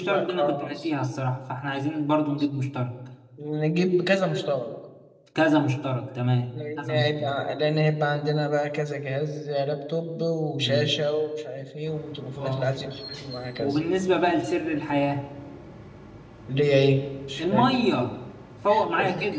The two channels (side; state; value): both; identical; correlation 1.00